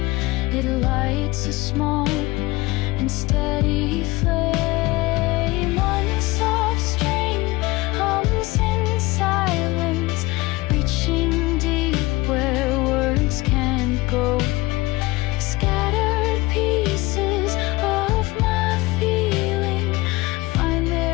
it lights a small and steady flame. One soft string hums in silence, reaching deep where words can't go. Scattered pieces of my feeling find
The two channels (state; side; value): quieter; right; 21.1 dB